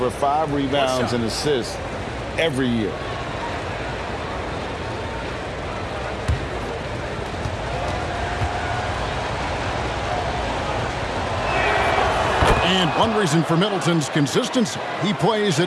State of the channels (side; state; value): both; identical; correlation 1.00